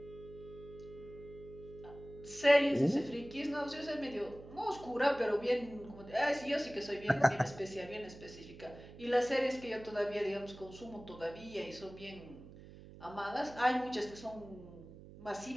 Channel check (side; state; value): right; noise; hum, 17 dB below the sound